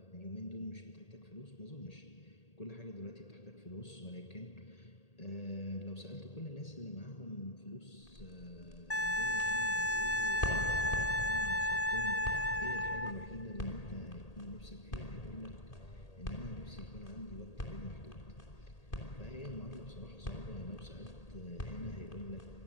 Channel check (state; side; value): late; right; 1.8 ms